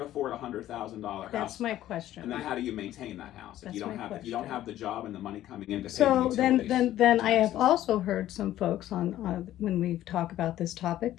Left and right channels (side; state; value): right; quieter; 13.3 dB